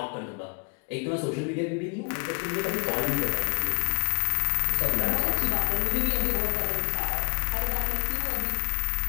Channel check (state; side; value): quieter; right; 35.4 dB